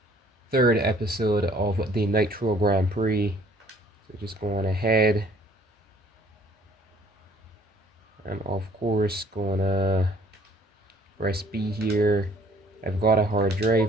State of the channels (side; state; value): both; normal; correlation 0.58